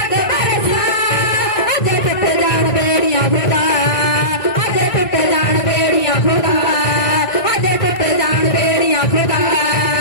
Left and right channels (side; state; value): right; late; 1.9 ms